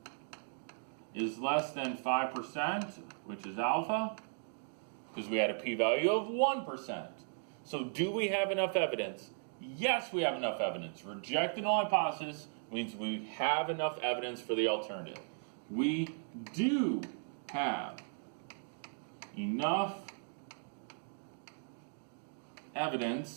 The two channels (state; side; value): silent; left; digital silence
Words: is less than 5%, which is alpha, because we had a p-value of 1%. So do we have enough evidence? Yes, we have enough evidence. Reject the null hypothesis means we have enough evidence for the alternative. We do have enough